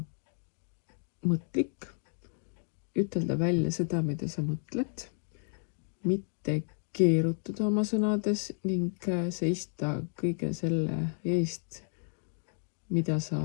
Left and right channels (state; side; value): silent; right; digital silence